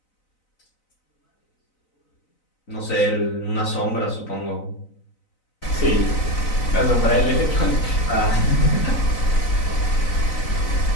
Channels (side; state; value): right; late; 4.0 ms